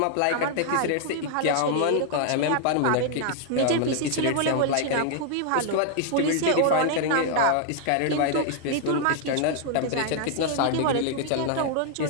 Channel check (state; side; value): different; both; correlation 0.00